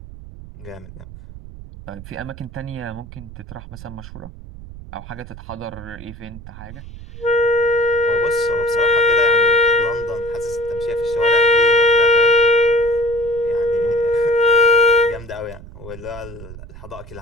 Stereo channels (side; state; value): right; noise; rumble, 15 dB below the sound